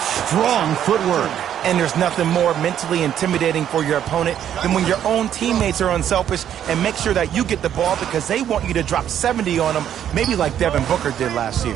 Strong footwork. And there's nothing more mentally intimidating for your opponent than when your own teammates are unselfish and make sure that you get the ball because they want you to drop 70 on them, maybe like Devin Booker did last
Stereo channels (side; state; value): left; quieter; 10.1 dB